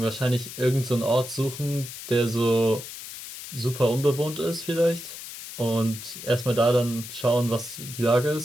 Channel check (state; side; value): noise; left; hiss, 11 dB below the sound